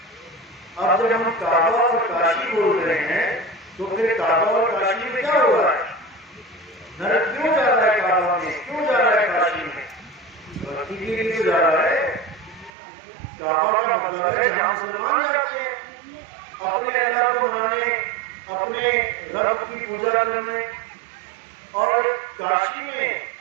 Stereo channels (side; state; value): left; drops out; at 12.7 s